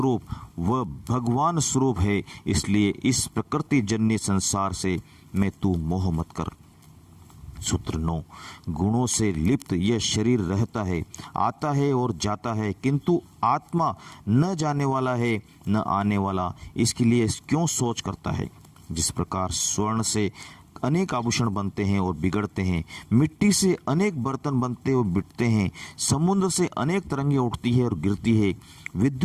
व भगवान स्वरूप है, इसलिए इस प्रकृति जन्य संसार से मैं तू मोह मत कर। सूत्र 9, गुणों से लिप्त यह शरीर रहता है, आता है और जाता है, किंतु आत्मा न जाने वाला है न आने वाला, इसके लिए क्यों सोच करता है। जिस प्रकार स्वर्ण से अनेक आभूषण बनते हैं और बिगड़ते हैं, मिट्टी से अनेक बर्तन बनते और बिकते हैं, समुद्र से अनेक तरंगें उठती है और गिरती है,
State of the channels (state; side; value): identical; both; correlation 1.00